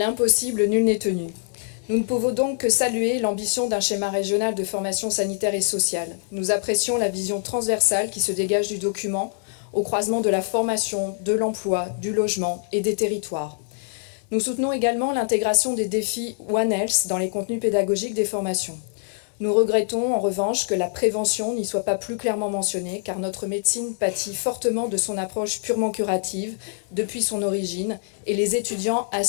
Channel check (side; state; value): right; silent; digital silence